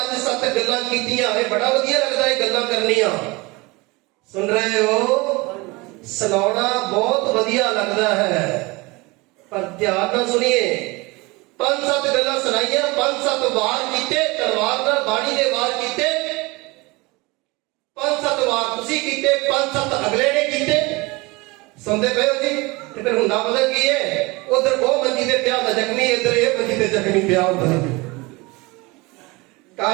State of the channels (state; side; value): quieter; left; 24.4 dB